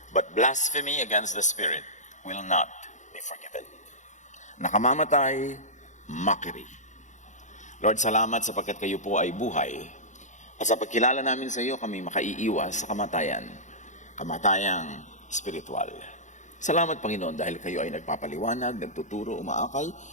but blasphemy against the Spirit will not be forgiven. Nakamamatay, mockery. Lord, salamat sapagkat kayo po ay buhay. At sa pagkilala namin sa iyo, kami makaiiwas sa kamatayan, kamatayang spiritual. Salamat, Panginoon, dahil kayo ay nagpapaliwanag, nagtuturo, umaakal,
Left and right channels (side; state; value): right; late; 0.35 ms